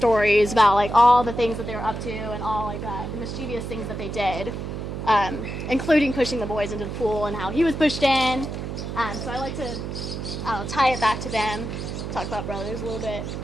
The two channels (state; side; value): noise; right; hum, 6 dB below the sound